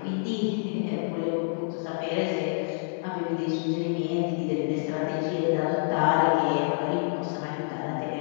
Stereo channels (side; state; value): right; silent; digital silence